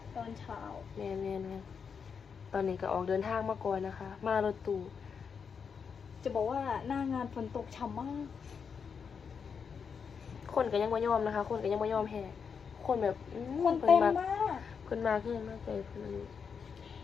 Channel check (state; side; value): quieter; right; 6.3 dB